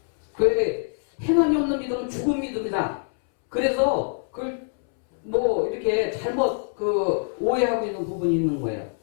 그 행함이 없는 믿음은 죽은 믿음이다. 그래서 그걸 뭐 이렇게 잘못 오해하고 있는 부분이 있는 거예요.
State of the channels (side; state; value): right; silent; 62 dB below the other